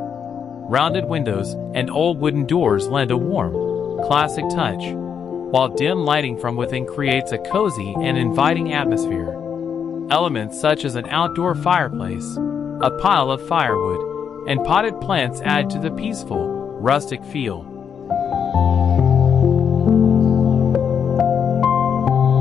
Rounded windows and old wooden doors lend a warm, classic touch, while dim lighting from within creates a cozy and inviting atmosphere. Elements such as an outdoor fireplace, a pile of firewood, and potted plants add to the peaceful, rustic feel.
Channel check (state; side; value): quieter; right; 7.4 dB